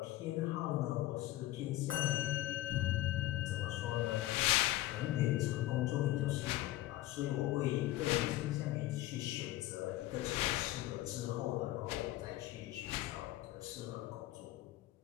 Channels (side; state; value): right; quieter; 15.9 dB